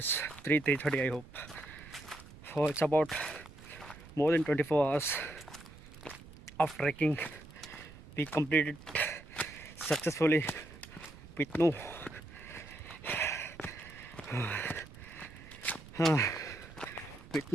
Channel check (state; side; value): noise; right; rumble, 18 dB below the sound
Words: 3:30 I hope. So it's about more than 24 hours of trekking. We completed successfully with no with